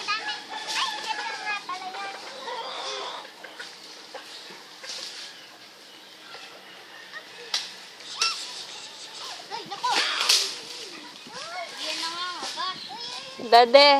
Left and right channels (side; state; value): both; identical; correlation 1.00